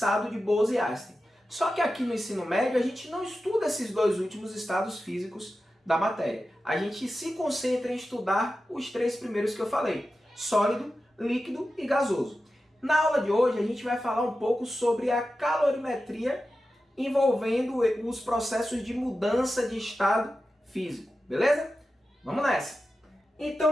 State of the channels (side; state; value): both; normal; correlation 0.92